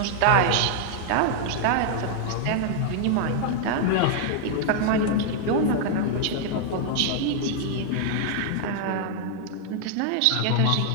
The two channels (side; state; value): both; different; correlation -0.01